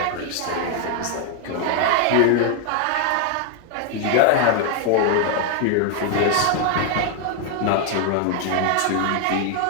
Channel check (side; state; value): both; different; correlation 0.01